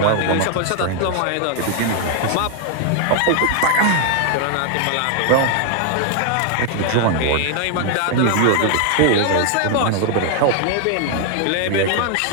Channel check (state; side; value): different; both; correlation 0.00